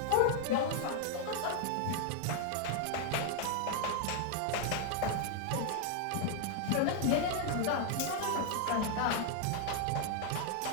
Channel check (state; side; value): different; both; correlation 0.00